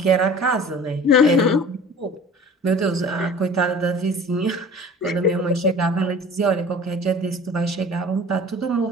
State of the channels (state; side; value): normal; both; correlation 0.44